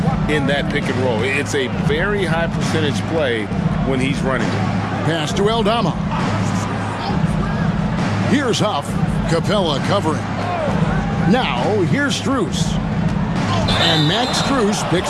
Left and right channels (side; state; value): both; identical; correlation 1.00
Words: in that pick and roll. It's a very high percentage play when he's running it. Pass to Aldama. Here's Huff. Capella covering. Now, here's Strus. And Max Strus